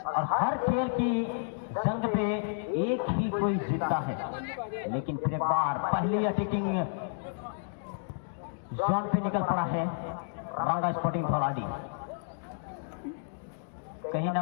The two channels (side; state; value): right; silent; digital silence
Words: और हर खेल की जंग पे एक ही कोई जीतता है। लेकिन फिर एक बार पहली अटैकिंग जोन पे निकल पड़ा है रांगा स्पोर्टिंग धौलाडी। कहीं ना